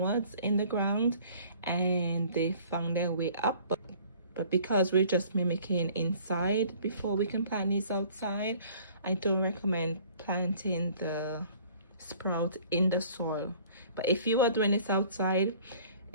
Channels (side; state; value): both; inverted; correlation -0.53